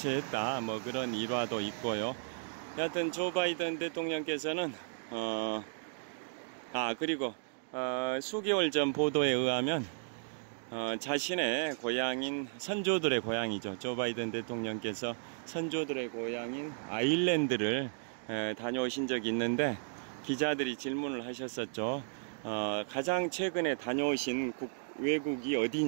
뭐 그런 일화도 있고요. 여하튼 조 바이든 대통령께서는 그리고 수개월 전 보도에 의하면 자신의 고향인 선조들의 고향이죠. 조 바이든 대통령께서 선조들의 고향인 아일랜드를 다녀오신 적이 있는데 기자들이 질문을 하셨었죠. 가장 최근에 다녀오신 외국이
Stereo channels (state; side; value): silent; left; digital silence